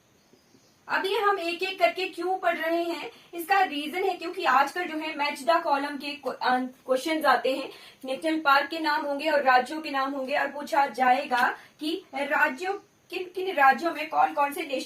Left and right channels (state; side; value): identical; both; correlation 1.00